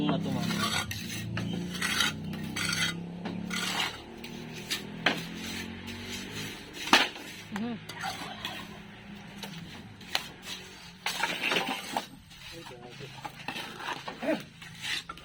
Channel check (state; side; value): identical; both; correlation 1.00